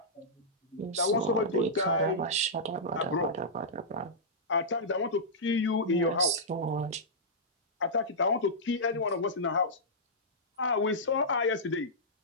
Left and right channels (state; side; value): normal; both; correlation -0.13